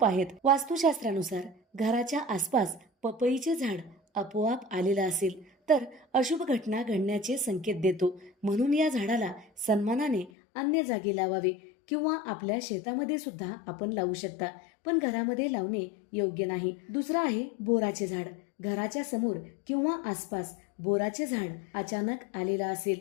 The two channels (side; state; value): right; drops out; at 10.3 s